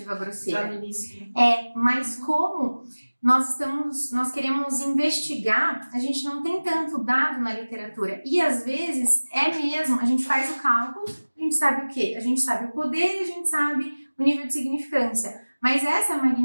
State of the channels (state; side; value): inverted; both; correlation -1.00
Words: grosseira. Já no início. Mas como nós queremos investigar, a gente não tem tanto dado na literatura. E às vezes mesmo, a gente faz o cálculo, a gente sabe o quê? A gente sabe o poder e a gente sabe o nível de significância. Mas essa